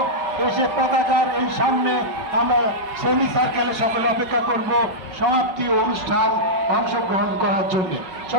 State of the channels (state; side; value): late; left; 5.1 ms